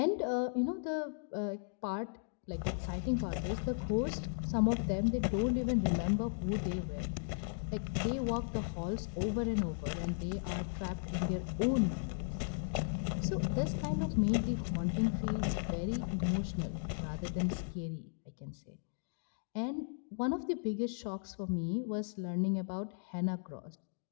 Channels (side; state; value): right; silent; digital silence